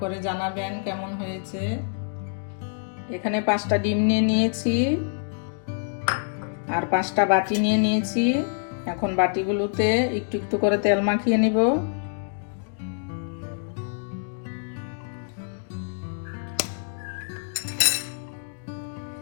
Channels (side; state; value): right; silent; digital silence